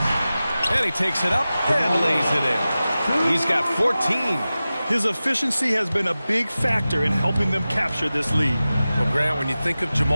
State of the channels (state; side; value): inverted; both; correlation -0.96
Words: And he takes it up and lays it in. He's got 14. His efficiency has been a big factor in helping them capture this lead. Well, Grant, when you think of